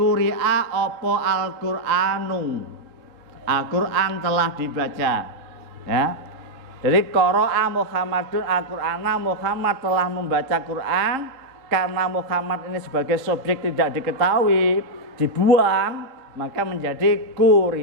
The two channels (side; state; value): left; late; 3.7 ms